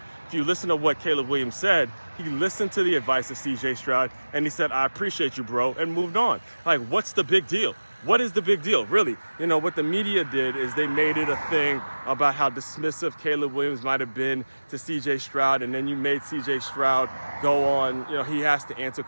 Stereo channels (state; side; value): inverted; both; correlation -1.00